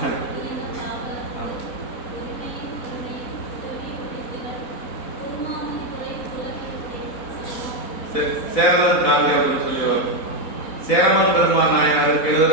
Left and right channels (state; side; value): late; right; 4.0 ms